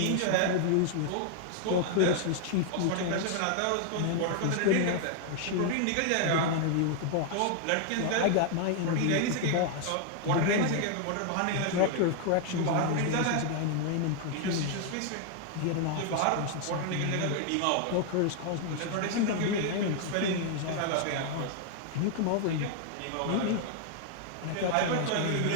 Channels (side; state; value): both; different; correlation 0.00